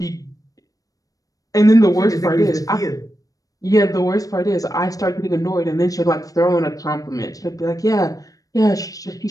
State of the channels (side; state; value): right; late; 0.17 ms